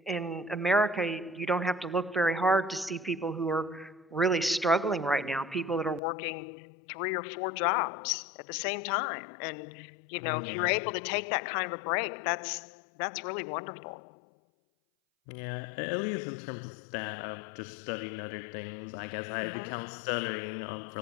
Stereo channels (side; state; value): right; drops out; at 6.0 s